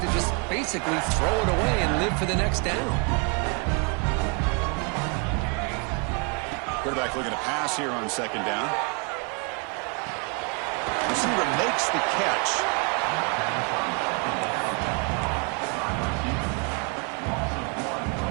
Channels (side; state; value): left; quieter; 34.5 dB